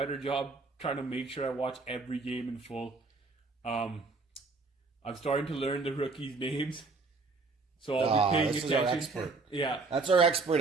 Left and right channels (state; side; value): quieter; left; 3.9 dB